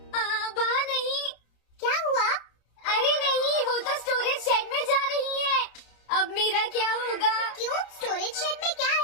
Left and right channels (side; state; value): right; late; 29 ms